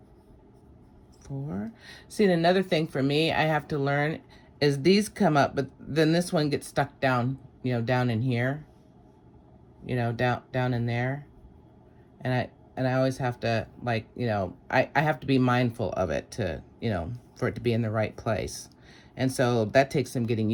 4. See, another thing for me I have to learn is these come up, but then this one gets stuck down, down in here, down in there. And I always have to, like, I have to be mindful of it to, for it to be in the right place. And so that takes some getting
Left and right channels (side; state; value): both; identical; correlation 1.00